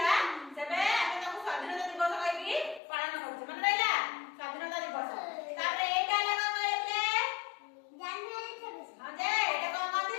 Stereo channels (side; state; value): right; drops out; at 2.8 s